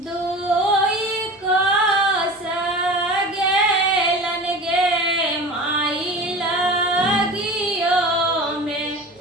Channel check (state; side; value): normal; both; correlation 0.35